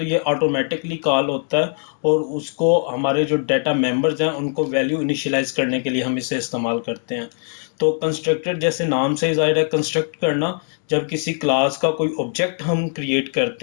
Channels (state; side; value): silent; right; 56 dB below the other